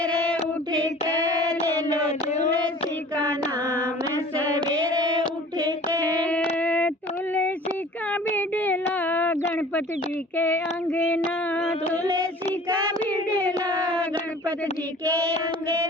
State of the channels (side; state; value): both; normal; correlation 0.46